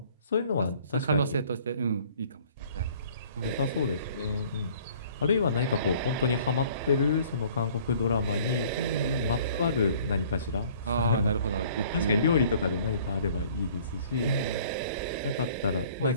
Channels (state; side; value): inverted; both; correlation -0.54